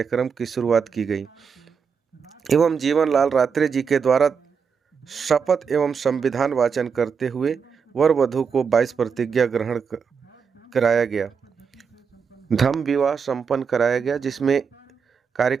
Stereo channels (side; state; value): left; quieter; 6.1 dB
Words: की शुरुआत की गई एवं जीवन लाल रात्रे जी के द्वारा शपथ एवं संविधान वाचन करते हुए वर वधू को 22 प्रतिज्ञा ग्रहण कराया गया। धम्म विवाह संपन्न कराया गया, जिसमें